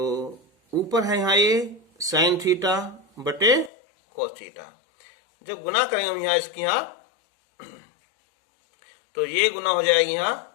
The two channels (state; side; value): drops out; right; at 3.7 s